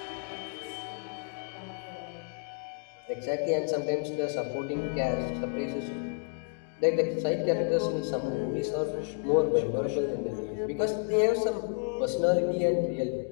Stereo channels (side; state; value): right; silent; 56 dB below the other